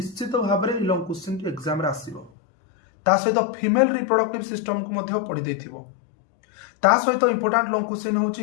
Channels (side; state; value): right; drops out; at 2.3 s